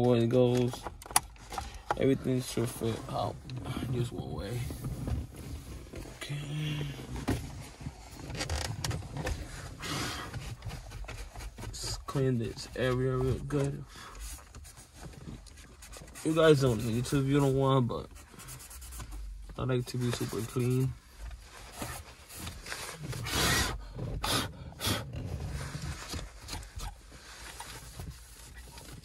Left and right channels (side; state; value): both; identical; correlation 1.00